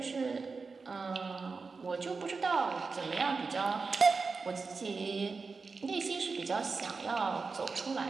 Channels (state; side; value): quieter; left; 4.5 dB